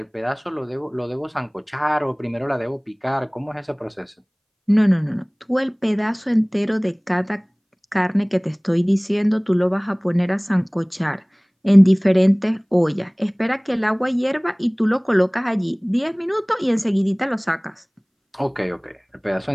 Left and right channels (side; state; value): both; identical; correlation 1.00